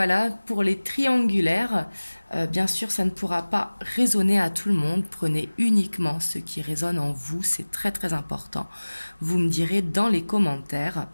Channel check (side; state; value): both; inverted; correlation -1.00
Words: pour les triangulaires, bien sûr, ça ne pourra pas résonner à tout le monde. Prenez uniquement ce qui résonne en vous, c'est très très important. Vous me direz dans les commentaires.